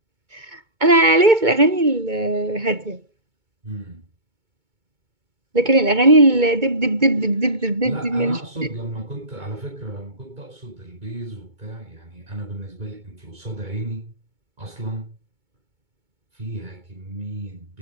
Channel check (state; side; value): late; left; 2.2 ms